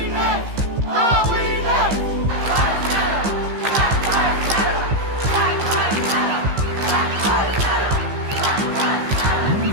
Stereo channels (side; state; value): left; late; 15 ms